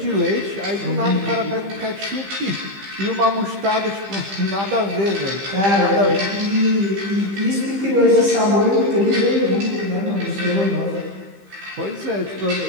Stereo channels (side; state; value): left; late; 15 ms